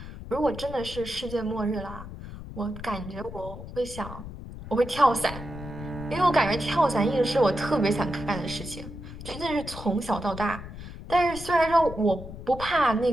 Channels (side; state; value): left; noise; rumble, 12 dB below the sound